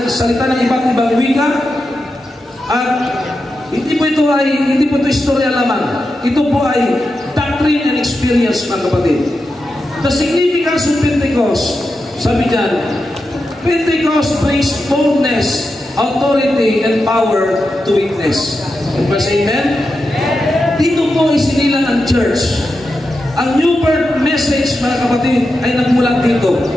ng iba't ibang wika. At hindi po ito istorya lamang. Ito po ay doctrine and experience, mga kapatid. The significance of Pentecost, sabi dyan, Pentecost brings boldness, authority, and power to witness. Amen? Dito po isinilang ang church. Ang new birth message, mga kapatid, ay nagmulat dito.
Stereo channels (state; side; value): normal; both; correlation 0.89